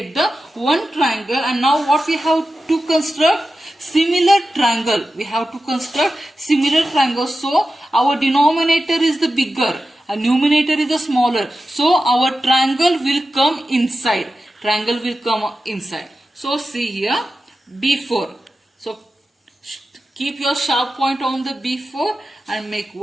the one triangle. And now what we have to construct? Similar triangle. We have to construct similar triangle. So our denominator is the bigger and numerator is the smaller. So our triangle will come inside. Triangle will come inside. So see here, B4. So keep your sharp point on the B4 and make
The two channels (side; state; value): both; normal; correlation 0.93